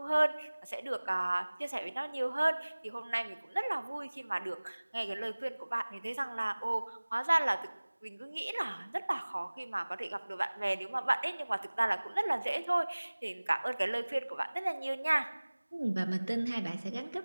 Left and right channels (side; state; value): both; inverted; correlation -1.00